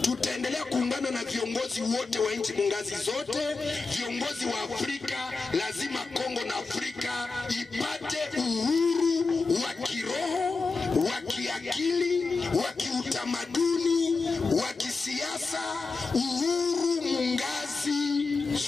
Tutaendelea kuungana na viongozi wote wa nchi mungazi zote, viongozi wa Afrika. Lazima Kongo na Afrika ipate uhuru wa kiroho, wa kiakili, wa kiutamaduni, wa kisiasa, uhuru mungazi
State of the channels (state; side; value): quieter; right; 4.1 dB